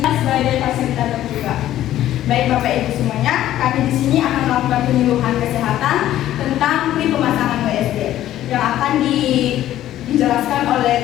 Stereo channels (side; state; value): right; quieter; 13.0 dB